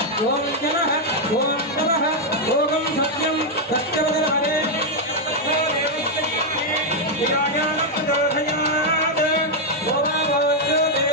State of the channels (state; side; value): normal; both; correlation 0.00